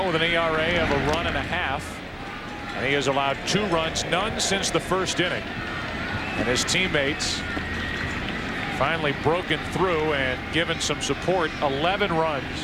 with an ERA of a run and a half. And he has allowed 2 runs, none since the first inning. And his teammates finally broken through and given some support. 11 runs,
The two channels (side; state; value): both; identical; correlation 1.00